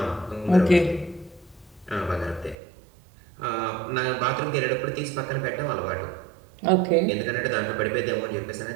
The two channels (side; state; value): left; drops out; at 2.6 s